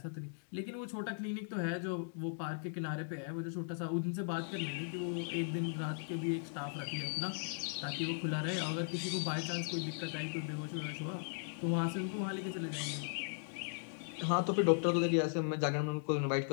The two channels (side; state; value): right; silent; digital silence